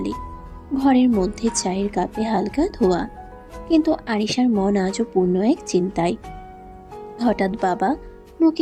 ঘরের মধ্যে চায়ের কাপে হালকা ধোয়া, কিন্তু আরিশার মন আজও পূর্ণ এক চিন্তায়। হঠাৎ বাবা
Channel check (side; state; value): both; identical; correlation 1.00